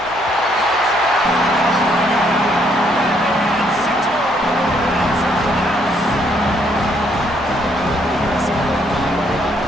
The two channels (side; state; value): right; noise; hum, 21 dB below the sound